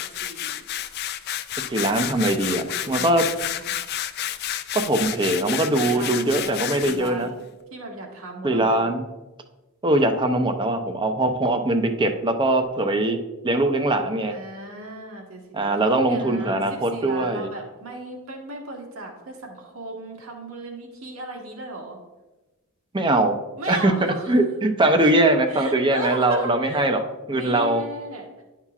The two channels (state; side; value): normal; both; correlation 0.28